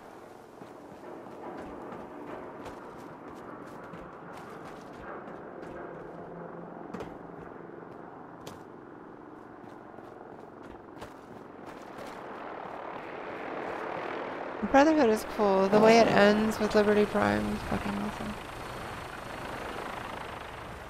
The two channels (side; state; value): both; identical; correlation 1.00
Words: Brotherhood is cool. The way it ends with Liberty Prime is fucking awesome.